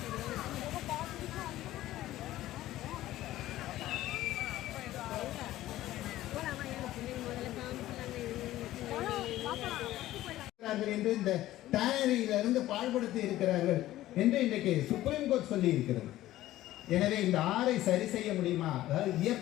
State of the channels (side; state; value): right; quieter; 15.0 dB